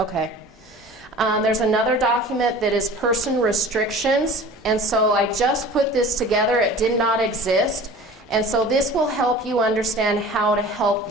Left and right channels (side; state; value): both; normal; correlation 0.41